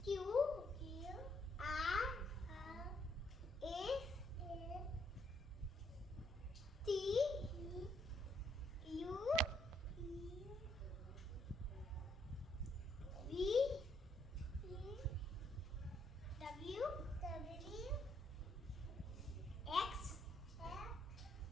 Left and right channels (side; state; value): both; normal; correlation 0.72